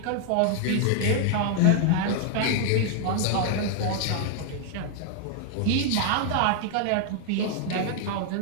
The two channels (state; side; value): different; both; correlation 0.00